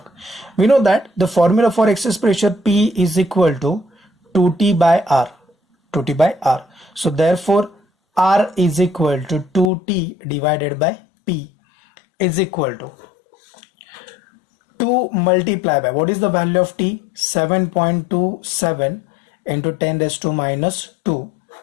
We know that the formula for excess pressure P is equal to 2T by R. 2T by R. So therefore R is equal to 2T divided by P. is equal to 2 multiply by, what is the value of T? 7.27 into 10 raised to minus 2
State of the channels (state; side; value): drops out; right; at 9.7 s